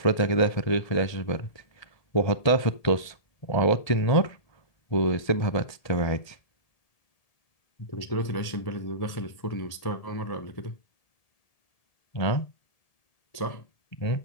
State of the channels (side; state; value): right; late; 1.7 ms